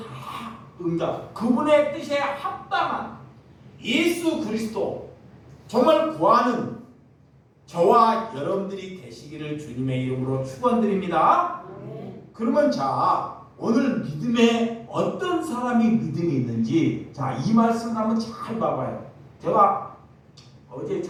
응답, 그분의 뜻에 합당한 예수 그리스도, 정말 구하는 저와 여러분들이 되시기를 주님의 이름으로 축원드립니다. 그러면 자, 오늘 믿음에 어떤 사람이 믿음이 있는지, 자, 이 말씀을 한번 잘 봐봐요. 제가 어제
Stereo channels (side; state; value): both; identical; correlation 1.00